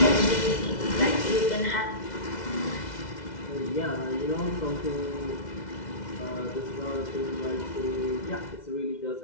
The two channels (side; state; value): right; late; 2.0 ms